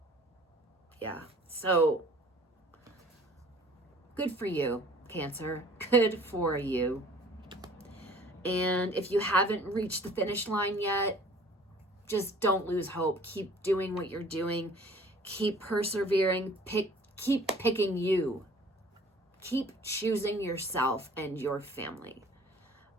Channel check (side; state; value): both; normal; correlation 0.51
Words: Yeah. So good for you, Cancer. Good for you. And if you haven't reached the finish line yet, just don't lose hope. Keep doing what you're doing. Keep persevering. Keep picking you. Keep choosing yourself and your family.